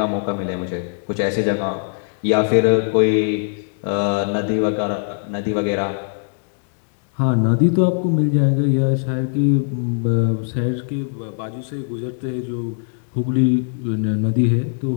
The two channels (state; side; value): silent; right; digital silence